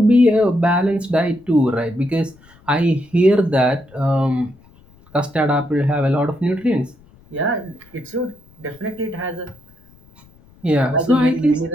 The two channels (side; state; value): left; noise; rumble, 28 dB below the sound